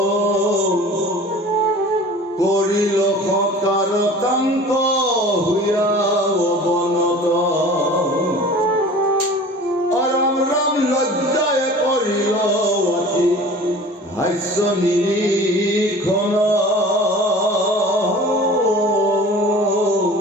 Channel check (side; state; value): both; normal; correlation 0.42